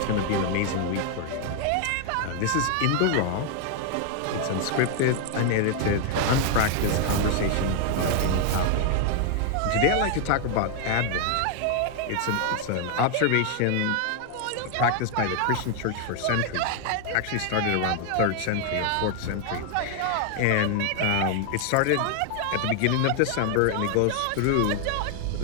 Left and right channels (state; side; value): different; both; correlation 0.00